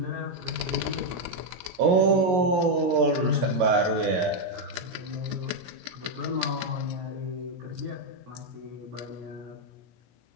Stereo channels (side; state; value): left; late; 16 ms